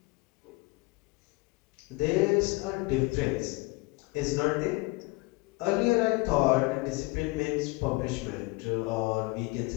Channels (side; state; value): right; quieter; 24.1 dB